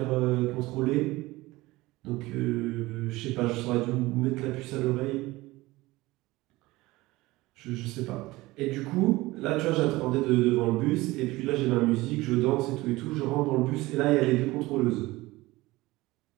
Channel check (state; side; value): quieter; left; 19.8 dB